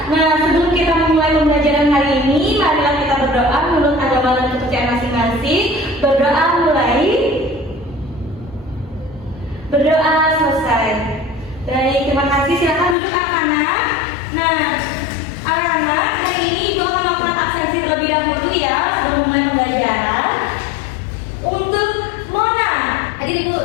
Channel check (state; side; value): drops out; right; at 13.0 s